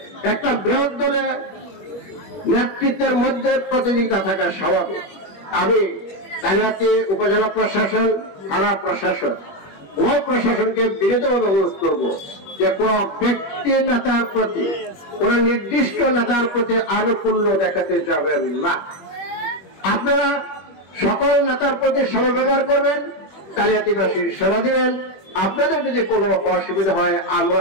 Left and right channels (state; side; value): late; right; 21 ms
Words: একটা বৃহৎ দলের নেতৃত্বের মধ্যে প্রতিযোগিতা থাকা স্বাভাবিক। আমি কালিহাতী উপজেলা প্রশাসন, থানা প্রশাসন, উভয় প্রশাসনকে বিনীতভাবে অনুরোধ করবো যে কোন ব্যক্তি নেতার প্রতি, কোন নির্দিষ্ট নেতার প্রতি আনুকূল্য দেখাতে যাবেন না। আপনারা সকল নেতার প্রতি সমব্যবহার করবেন, কালিহাতীবাসীর সেবা দিবেন। আপনাদের যদি কোনো অসুবিধা হয় আমরা